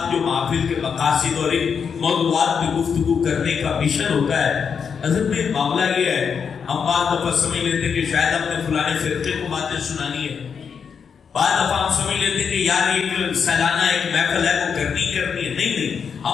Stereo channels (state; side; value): quieter; right; 6.5 dB